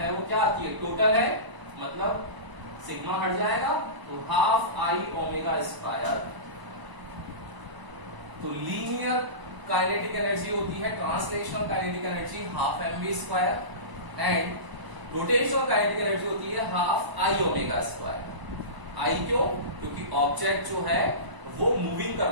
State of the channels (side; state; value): left; late; 1.0 ms